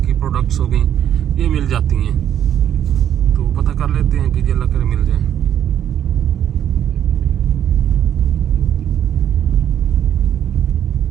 की प्रोडक्ट्स हो गई, ये मिल जाती हैं। तो पता कर लेते हैं कि अल्लाह करे मिल जाए।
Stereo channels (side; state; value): left; quieter; 10.1 dB